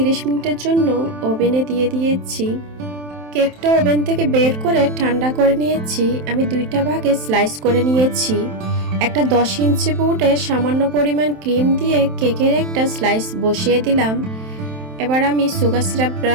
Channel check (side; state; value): left; late; 27 ms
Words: মিনিটের জন্য ওভেনে দিয়ে দিয়েছি। কেকটা ওভেন থেকে বের করে ঠান্ডা করে নিয়েছি। আমি 2টা ভাগে স্লাইস করে নিয়েছি। একটা 10 ইঞ্চি বোর্ডে সামান্য পরিমাণ ক্রিম দিয়ে কেকের একটা স্লাইস বসিয়ে দিলাম। এবার আমি সুগার সিরাপ